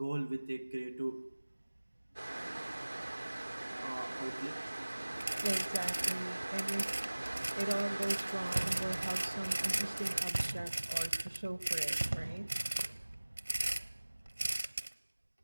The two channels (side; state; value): both; inverted; correlation -1.00